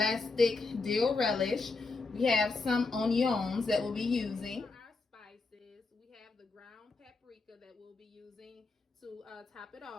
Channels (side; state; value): right; quieter; 3.8 dB